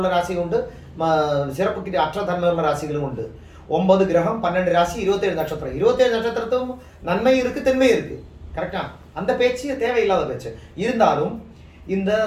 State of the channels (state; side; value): identical; both; correlation 1.00